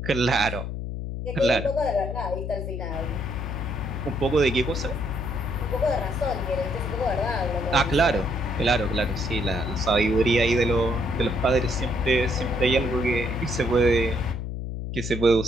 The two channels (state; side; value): noise; left; hum, 5 dB below the sound